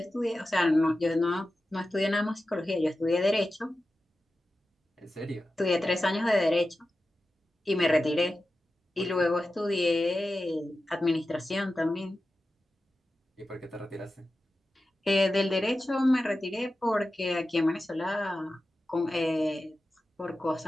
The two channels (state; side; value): normal; both; correlation 0.93